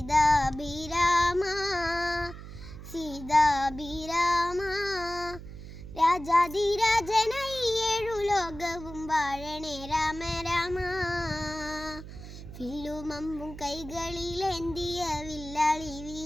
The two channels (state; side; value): noise; right; hum, 13 dB below the sound